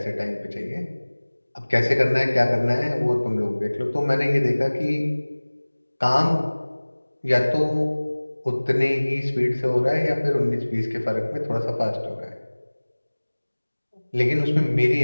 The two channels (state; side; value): inverted; both; correlation -1.00